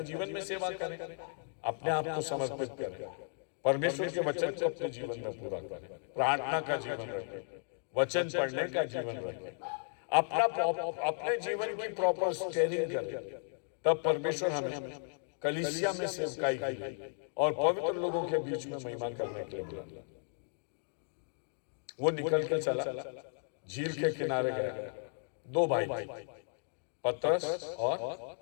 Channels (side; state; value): right; silent; 54 dB below the other